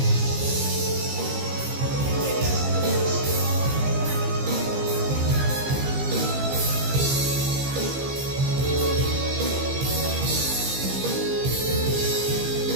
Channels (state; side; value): late; left; 15 ms